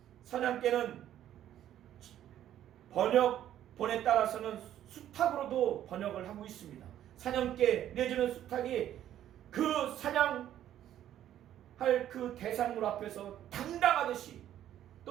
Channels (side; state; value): left; quieter; 11.5 dB